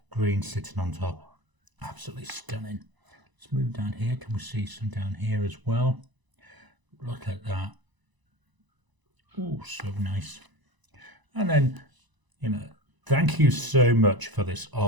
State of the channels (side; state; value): left; late; 1.0 ms